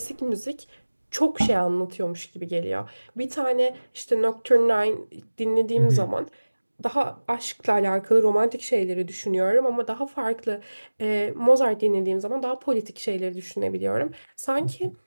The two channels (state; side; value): inverted; both; correlation -1.00